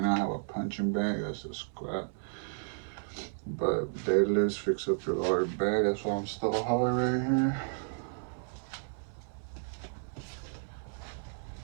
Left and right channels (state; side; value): silent; left; 56 dB below the other